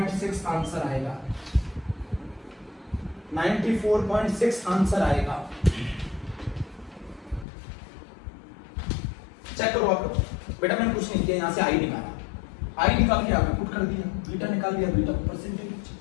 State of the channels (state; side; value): drops out; right; at 7.5 s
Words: आंसर आएगा। 94.6 आंसर आएगा। चेक करो आप लोग। बेटा मैंने कुछ नहीं किया, यहां से आई निकाला, आई निकाल के आपने पुट कर दिया, बीटा निकाल दिया, बीटा परसेंटेज।